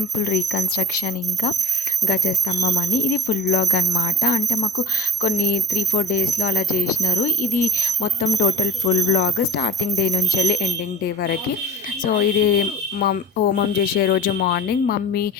రీకన్స్ట్రక్షన్ ఇంకా గజస్తంభం అని. ఇది ఫుల్ వ్లాగ్ అనమాట. అంటే మాకు కొన్ని 3-4 డేస్లో అలా చేసినారు. ఇది మొత్తం total full vlog starting day నుంచి వెళ్ళి ఎండింగ్ డే వరకు. సో ఇది హోమం చేసే రోజు మార్నింగ్ మమ్మీ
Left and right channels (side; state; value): both; normal; correlation 0.44